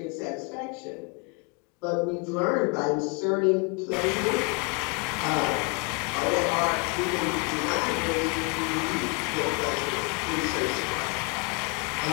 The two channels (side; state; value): right; quieter; 32.7 dB